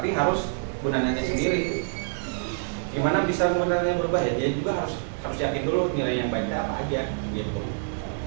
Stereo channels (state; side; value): silent; left; digital silence